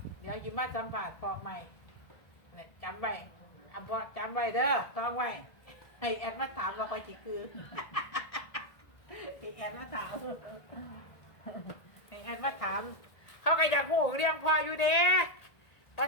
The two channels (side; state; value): right; late; 1.7 ms